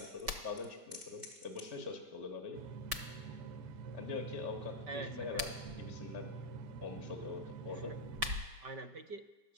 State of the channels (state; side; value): late; left; 5.2 ms